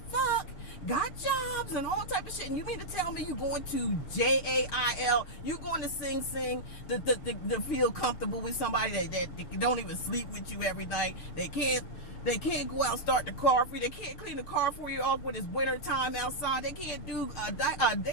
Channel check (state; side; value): late; right; 6.8 ms